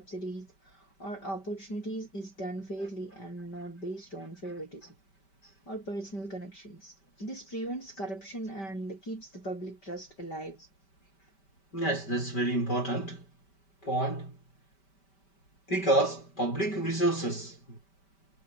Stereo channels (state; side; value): late; right; 5.1 ms